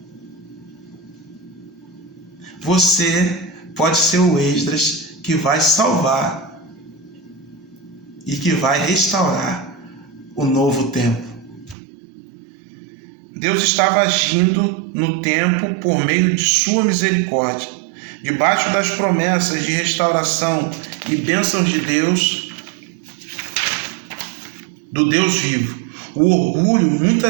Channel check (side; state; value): left; drops out; at 11.8 s